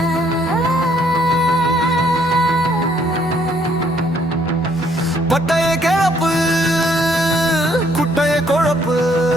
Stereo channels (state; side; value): normal; both; correlation 0.66